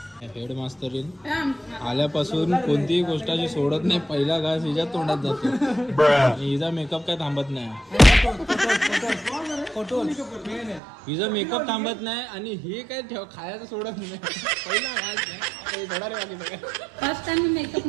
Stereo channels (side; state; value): left; drops out; at 10.8 s